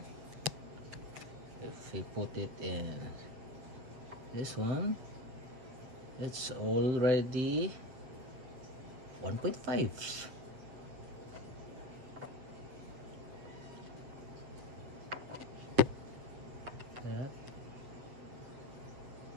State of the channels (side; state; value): left; late; 8.2 ms